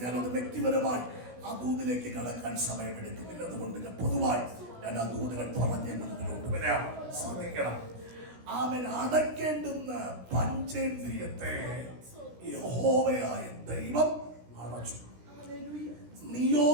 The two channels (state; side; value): late; left; 16 ms